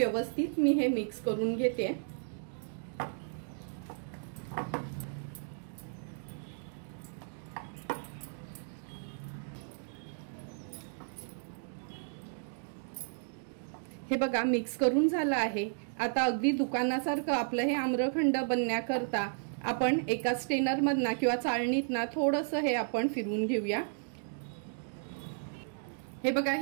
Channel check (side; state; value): left; silent; digital silence